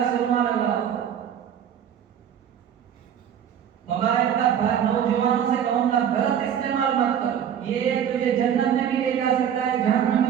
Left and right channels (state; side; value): quieter; left; 9.0 dB